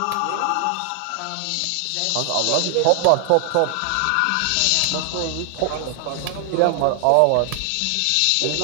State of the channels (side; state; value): both; different; correlation 0.00